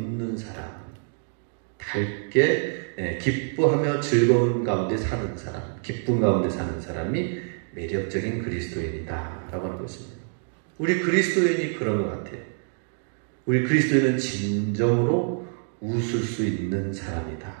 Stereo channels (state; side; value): silent; left; 57 dB below the other